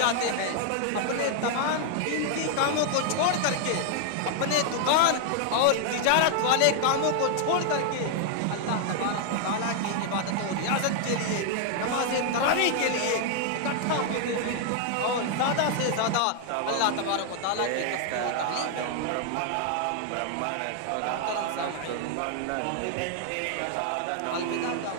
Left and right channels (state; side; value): different; both; correlation 0.00